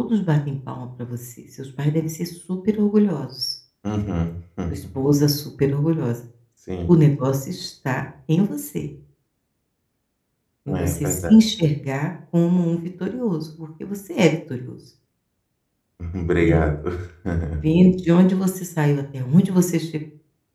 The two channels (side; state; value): both; identical; correlation 1.00